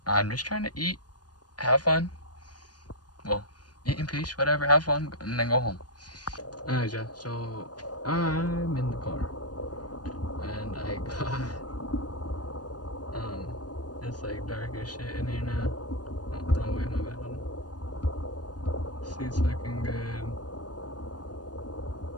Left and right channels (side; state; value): right; late; 0.69 ms